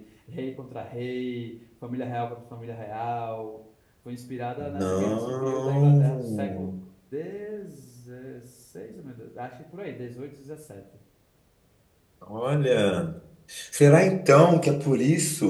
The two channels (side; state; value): both; identical; correlation 1.00